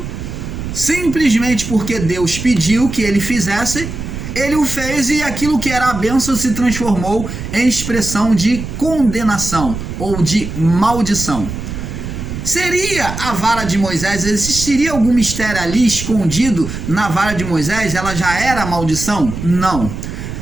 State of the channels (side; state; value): right; noise; rumble, 7 dB below the sound